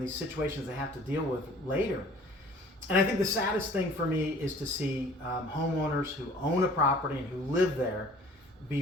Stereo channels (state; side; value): normal; both; correlation 0.51